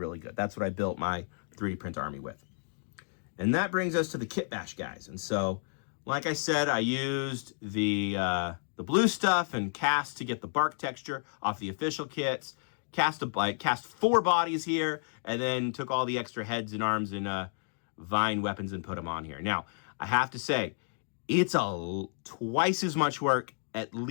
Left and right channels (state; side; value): silent; right; 57 dB below the other